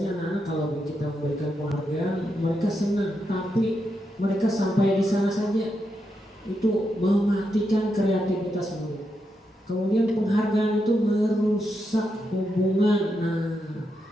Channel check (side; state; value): both; normal; correlation 0.84